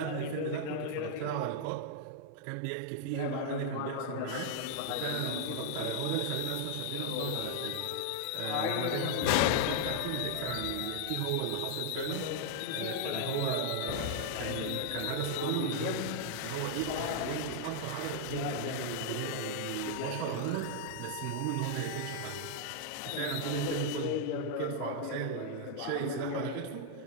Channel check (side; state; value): both; different; correlation 0.00